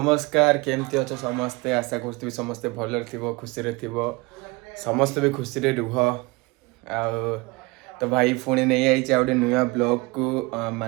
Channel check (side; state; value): left; quieter; 24.6 dB